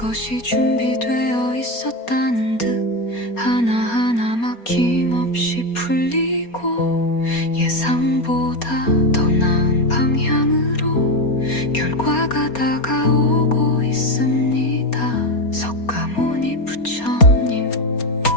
준비되어 있었다는 듯 하나하나 막힘없이 풀리고 예상보다 더 나은 방향으로 결과가 다가오고 있습니다. 석가모니 부처님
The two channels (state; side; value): late; right; 4.3 ms